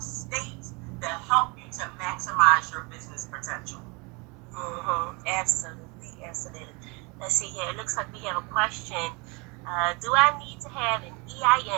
states that help you to maximize your business potential. Absolutely. Let's see here. It looks like we have a question. Do I need to have an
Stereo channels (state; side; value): quieter; left; 29.2 dB